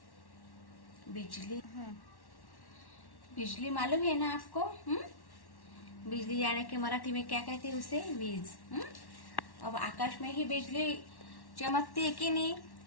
बिजली। बिजली मालूम है ना आपको? बिजली यानी कि मराठी में क्या कहते हैं उसे? वीज। अब आकाश में ही बिजली चमकती है कि नहीं?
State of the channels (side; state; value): right; late; 1.1 ms